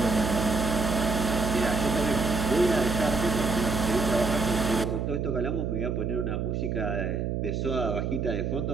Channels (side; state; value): right; noise; hum, 1 dB below the sound